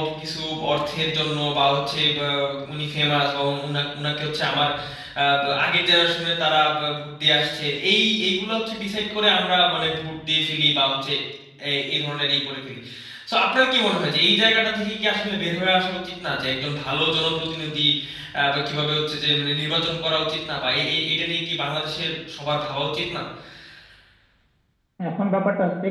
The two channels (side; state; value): both; identical; correlation 1.00